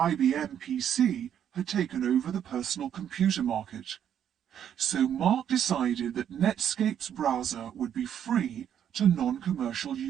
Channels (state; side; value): quieter; left; 9.4 dB